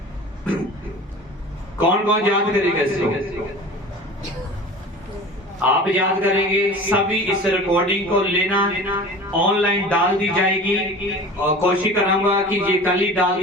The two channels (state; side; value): normal; both; correlation 0.38